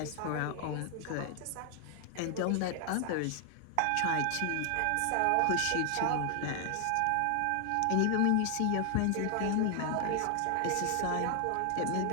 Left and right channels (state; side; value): different; both; correlation 0.00